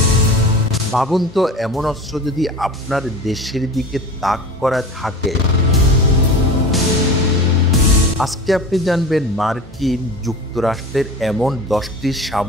ভাবুন তো, এমন অস্ত্র যদি আপনার দেশের দিকে তাক করা থাকে। আজকে আপনি জানবেন মার্কিন যুক্তরাষ্ট্রের এমন 10টি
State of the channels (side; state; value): both; normal; correlation 0.34